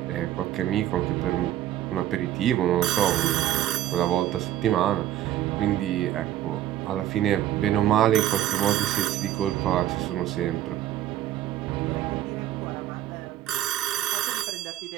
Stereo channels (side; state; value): left; quieter; 12.4 dB